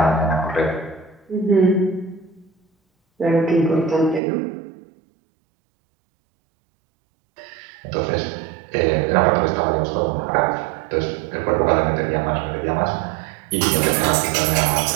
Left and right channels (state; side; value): drops out; left; at 4.2 s